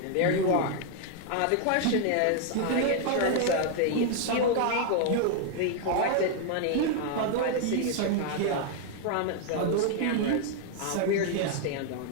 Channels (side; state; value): both; different; correlation 0.00